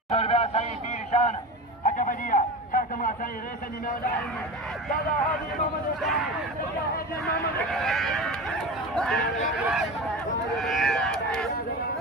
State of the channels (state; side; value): normal; both; correlation 0.28